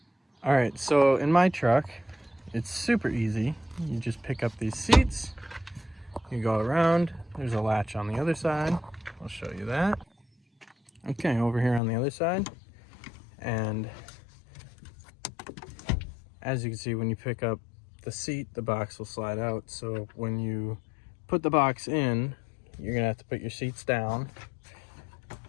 Alright, so in my truck, it's super easy. You just pick up these seats, you go around, there's a latch on the other side. I'll show you that. Okay, over here on the other side. And as you can see, when you pick up the seat, the box will slide out. So when you put the box in, you're gonna have to put your seats down,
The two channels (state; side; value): drops out; right; at 11.8 s